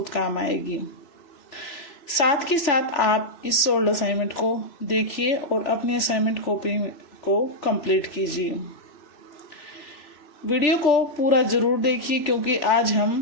काम आएगी। साथ के साथ आप इस सोल्ड असाइनमेंट को देखिए और अपनी असाइनमेंट कॉपी को कंप्लीट कीजिए। वीडियो को पूरा ज़रूर देखिए क्योंकि आज हम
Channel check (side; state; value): right; late; 3.4 ms